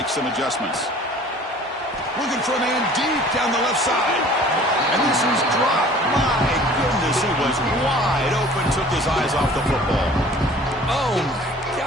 some adjustments. Looking for a man deep down the left side. And this is dropped. My goodness, he was wide open, took his eyes off the football. Oh, my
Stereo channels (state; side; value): normal; both; correlation 0.49